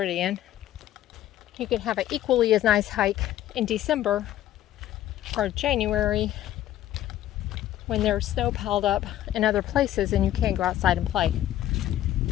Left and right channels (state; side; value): quieter; right; 12.9 dB